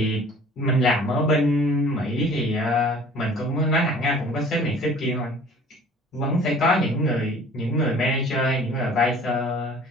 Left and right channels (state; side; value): normal; both; correlation 0.49